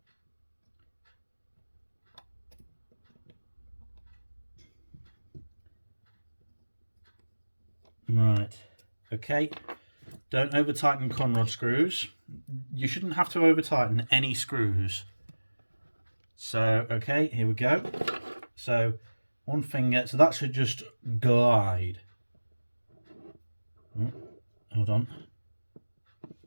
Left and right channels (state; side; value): inverted; both; correlation -1.00